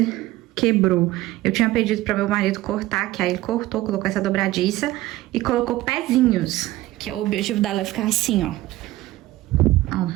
quebrou. Eu tinha pedido pra meu marido cortar, que aí ele cortou, colocou essa dobradiça e colocou pezinhos, que o objetivo dela é ficar assim, ó.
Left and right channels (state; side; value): quieter; left; 17.0 dB